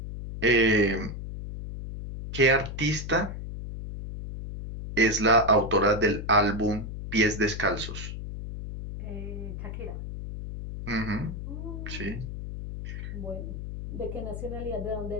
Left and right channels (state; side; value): noise; left; hum, 7 dB below the sound